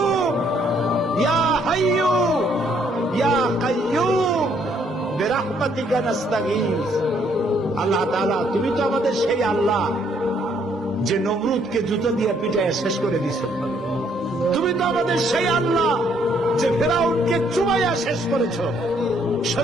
ইয়া হাইয়ু ইয়া কাইয়ুম বিরহমাতিকা নাস্তাগীস। আল্লাহ তাআলা, তুমি তো আমাদের সেই আল্লাহ যে নমরুদকে জুতো দিয়ে পিটায় শেষ করে দিয়েছে। তুমি তো আমাদের সেই আল্লাহ যে ফেরাউনকে চুবাইয়া শেষ করেছ।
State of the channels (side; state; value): both; normal; correlation 0.68